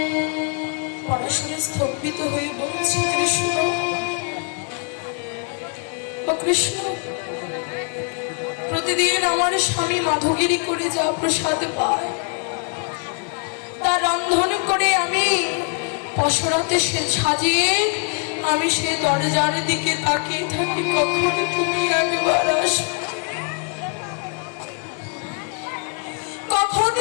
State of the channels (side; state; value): right; quieter; 39.0 dB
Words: পরাশরী স্তম্ভিত হয়ে বলছে, কৃষ্ণ, ও কৃষ্ণ, প্রতিদিন আমার স্বামী মাধবগিরি করে যা প্রসাদ পায়, তা রন্ধন করে আমি পসরাতে সাজিয়ে আমি সে দরজার দিকে তাকিয়ে থাকি, কখনো তুমি একবার আসো, কখন